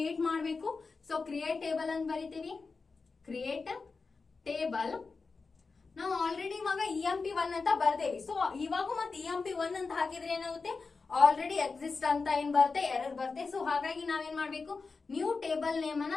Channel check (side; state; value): right; quieter; 4.4 dB